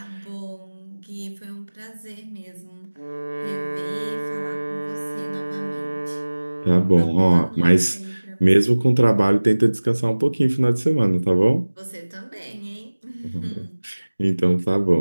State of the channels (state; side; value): inverted; both; correlation -1.00